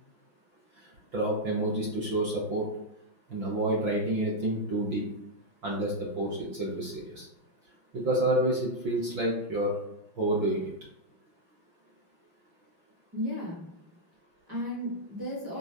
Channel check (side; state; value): left; late; 5.9 ms